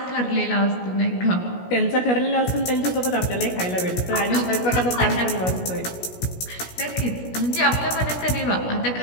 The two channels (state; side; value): late; right; 16 ms